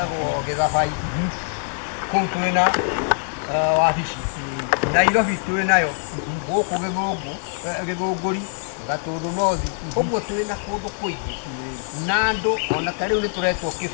Gĩthabai kũu twĩna wabici Nairobi twĩnayo gũkũ Gĩthũngũri Gatũndũ North ũguo twĩna kũndũ kũingĩ na andũ ona ta rĩu nĩ tũretwo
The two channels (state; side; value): silent; right; digital silence